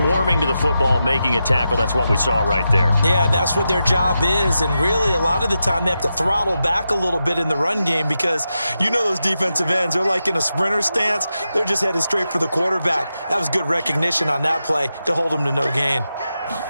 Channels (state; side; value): inverted; both; correlation -0.89